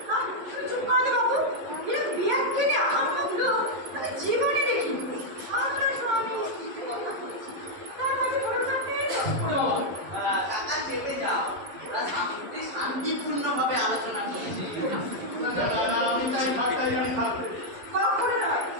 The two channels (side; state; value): left; late; 11 ms